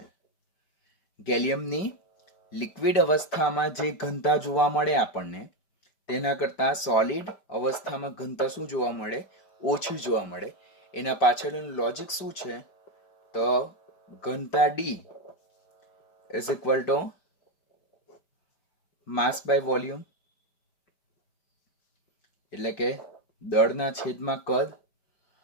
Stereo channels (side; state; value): right; late; 5.1 ms